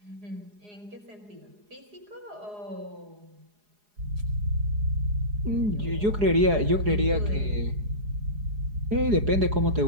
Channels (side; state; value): left; late; 4.8 ms